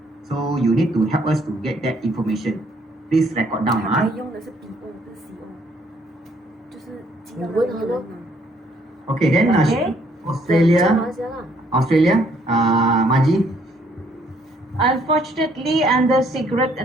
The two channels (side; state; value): both; normal; correlation 0.66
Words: So you need to help us to get that information. Please record down. 用的是 PO 不是 CO，就是寄到那个人啊。 Okay, then Okay. Australia, Maji. Unfortunately, under cigarette